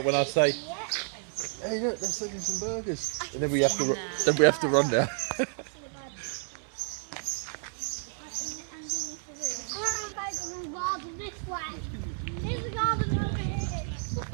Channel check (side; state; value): left; silent; 57 dB below the other